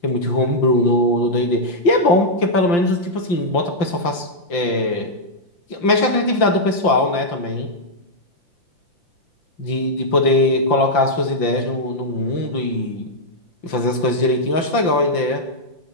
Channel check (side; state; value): right; late; 5.8 ms